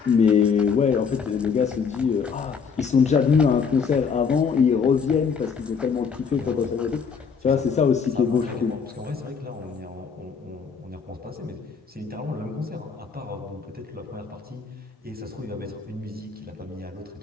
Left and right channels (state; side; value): quieter; right; 6.0 dB